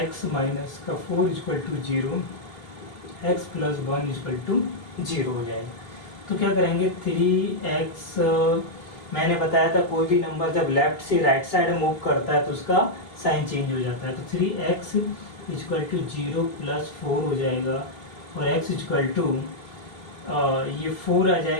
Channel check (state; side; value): late; right; 3.2 ms